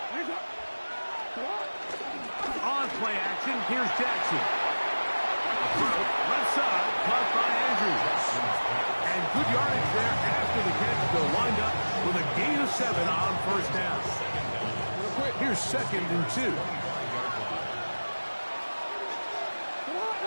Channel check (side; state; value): both; inverted; correlation -1.00